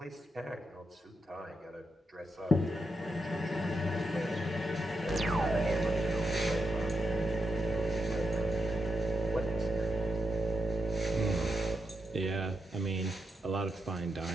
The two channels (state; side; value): normal; both; correlation 0.84